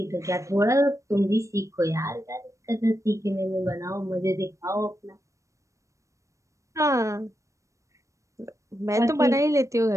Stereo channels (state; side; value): late; left; 0.15 ms